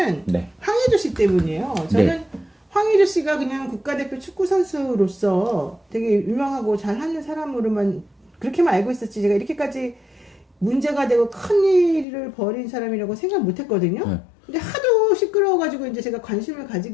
네. 황의조 씨 때문이에요. 저는 네. 황의조 씨가 그냥 국가대표 축구 선수로서 되게 유명하고 잘하는 사람으로만 그렇게만 알고 있었지, 제가 이렇게까지 문제가 되고 큰 일을 벌인 사람이라고 생각 못 했거든요. 네. 근데 하도 시끄러워가지고 이제 제가 관심을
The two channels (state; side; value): drops out; right; at 12.1 s